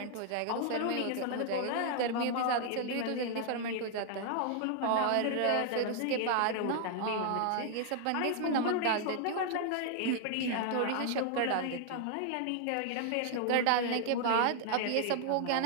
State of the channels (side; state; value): both; different; correlation 0.00